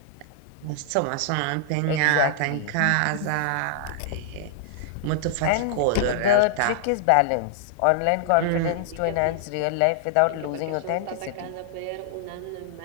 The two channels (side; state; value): both; different; correlation -0.01